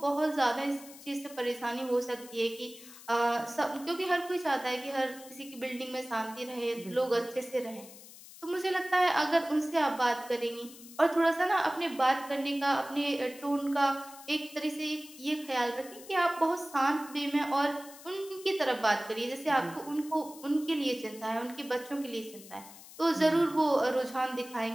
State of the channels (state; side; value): noise; left; hiss, 18 dB below the sound